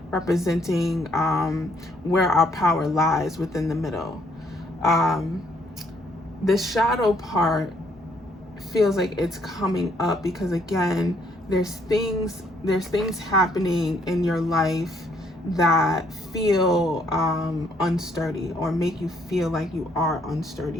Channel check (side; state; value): both; normal; correlation 0.68